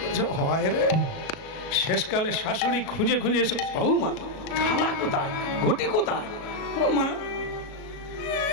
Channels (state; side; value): late; right; 37 ms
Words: হয় রে। শেষকালে শাশুড়ি খুঁজে খুঁজে এসে, বৌমা থালা কোথায়, ঘটি কোথায়? মা